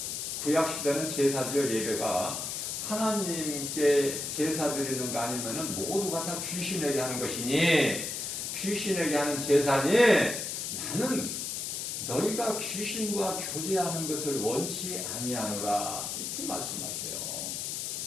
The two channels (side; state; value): left; noise; hiss, 3 dB below the sound